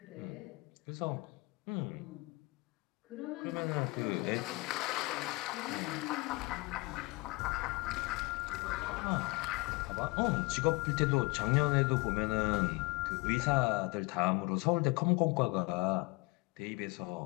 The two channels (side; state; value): right; quieter; 24.9 dB